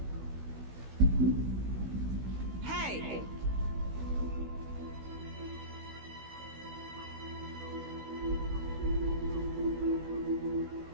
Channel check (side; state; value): left; late; 16 ms